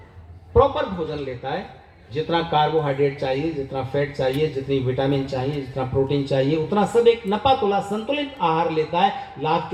प्रॉपर भोजन लेता है, जितना कार्बोहाइड्रेट चाहिए, जितना फैट चाहिए, जितनी विटामिन चाहिए, जितना प्रोटीन चाहिए, उतना सब एक नपा तुला संतुलित आहार लेता है। लाभ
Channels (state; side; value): identical; both; correlation 1.00